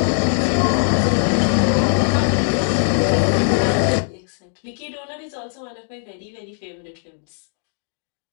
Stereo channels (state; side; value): silent; right; digital silence